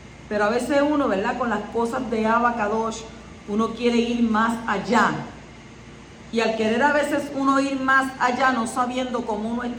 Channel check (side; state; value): both; identical; correlation 1.00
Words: Pero a veces uno, ¿verdad?, con las cosas de Abba Kadosh, uno quiere ir más allá. Y al querer a veces uno ir más allá, no sabiendo cómo uno